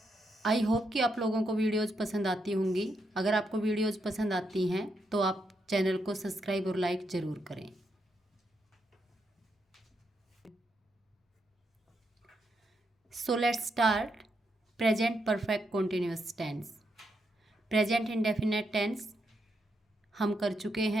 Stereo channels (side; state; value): both; normal; correlation 0.81